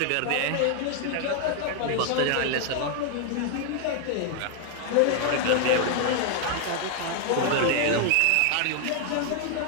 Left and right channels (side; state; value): both; different; correlation 0.00